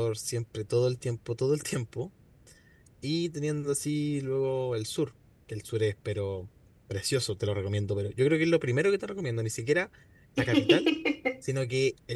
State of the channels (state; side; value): identical; both; correlation 1.00